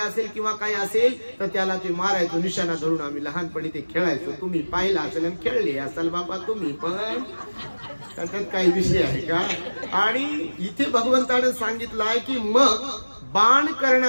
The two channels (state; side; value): inverted; both; correlation -1.00